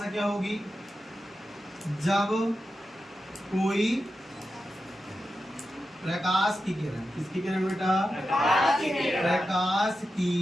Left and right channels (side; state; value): both; normal; correlation 0.90